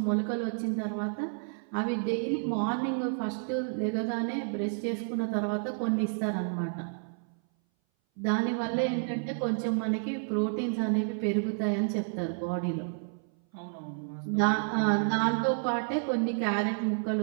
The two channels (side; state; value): left; silent; 58 dB below the other